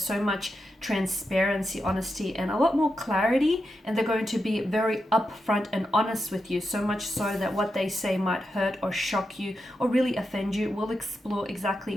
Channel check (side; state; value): both; normal; correlation 0.87